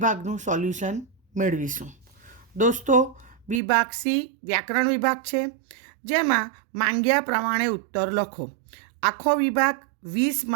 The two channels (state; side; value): drops out; left; at 3.6 s